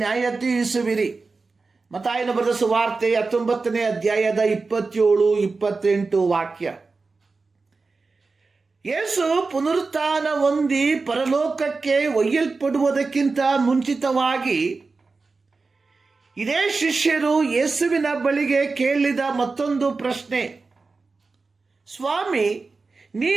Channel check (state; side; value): quieter; left; 4.1 dB